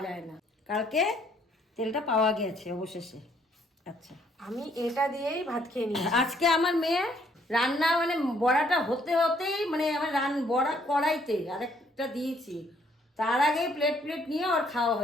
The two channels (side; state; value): both; normal; correlation 0.66